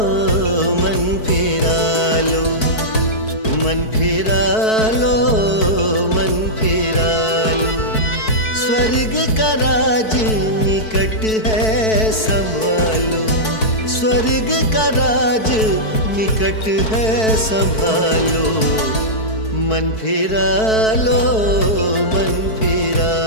मन फिरा मन फिरा लो, मन फिरा लो, स्वर्ग का राज निकट है संभालो, स्वर्ग का राज निकट है संभालो। मन फिरा लो, मन फिरा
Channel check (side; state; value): right; late; 4.6 ms